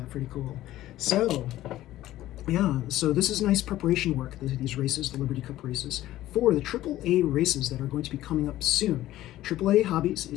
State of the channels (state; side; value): quieter; right; 14.7 dB